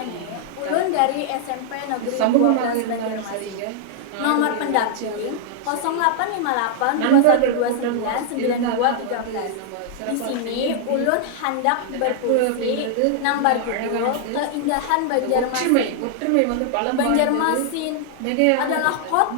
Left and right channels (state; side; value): different; both; correlation -0.01